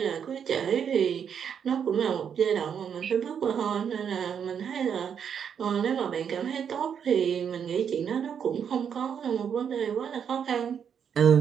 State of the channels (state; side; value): quieter; left; 7.7 dB